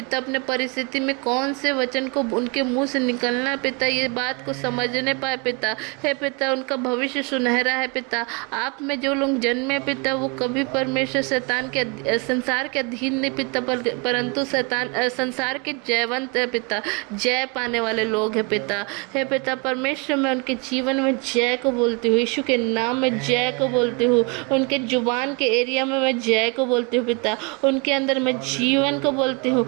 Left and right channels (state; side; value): quieter; left; 31.6 dB